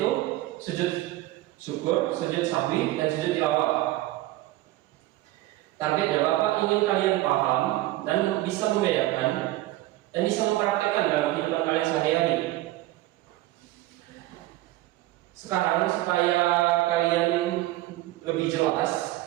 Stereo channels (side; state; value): left; quieter; 16.8 dB